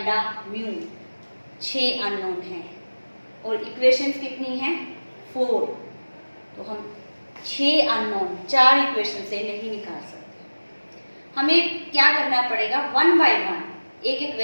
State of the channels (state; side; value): inverted; both; correlation -1.00